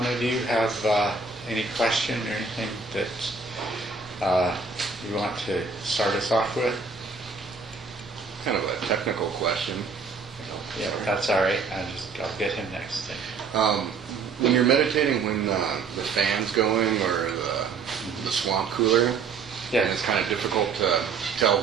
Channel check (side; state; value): left; quieter; 4.9 dB